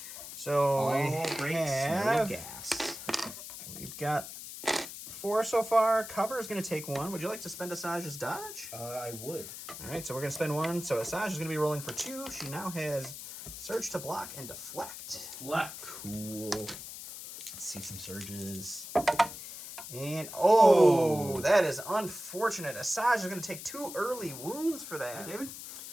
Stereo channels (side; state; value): left; noise; hiss, 11 dB below the sound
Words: So All we breaks, no have, gas. we've got 4 so far. Cover is going to take 1. Would you like to spend Asajj's dodge? I would. All right, so we're going to spend 1. So Asajj is going to be rolling for 2. She now has surge to block and deflect. Cool. Let's see some surges. And, oh, that is unfortunate. Asajj is going to take 2 early wounds for that. David?